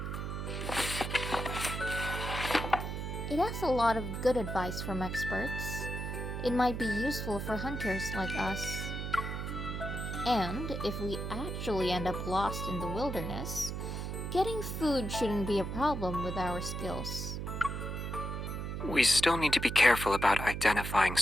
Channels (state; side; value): noise; right; hum, 4 dB below the sound